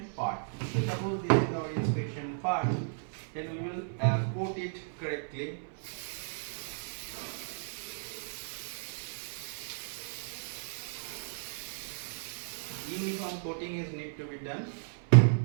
part. So suppose this is our inspection part, then we will coat it correctly. Uniform coating is need to be done.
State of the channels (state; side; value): silent; left; 55 dB below the other